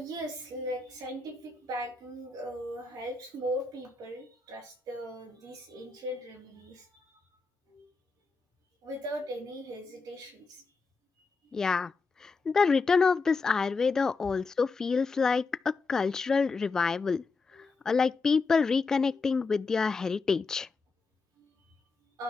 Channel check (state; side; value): quieter; right; 4.3 dB